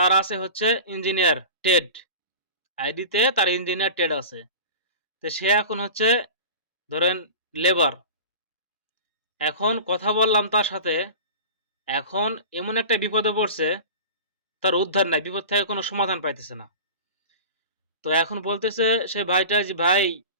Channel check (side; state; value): both; inverted; correlation -0.34